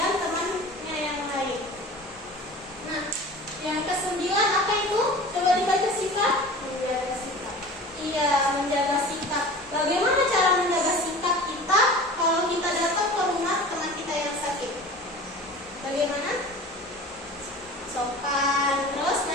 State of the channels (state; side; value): normal; both; correlation 0.38